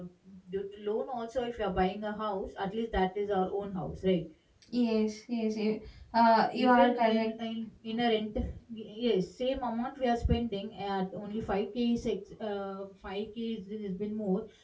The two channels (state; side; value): identical; both; correlation 1.00